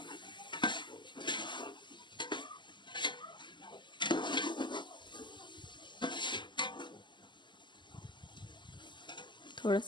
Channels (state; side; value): late; right; 0.22 ms